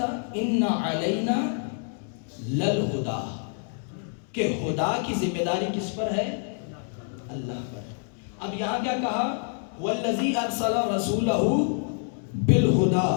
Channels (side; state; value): right; silent; 60 dB below the other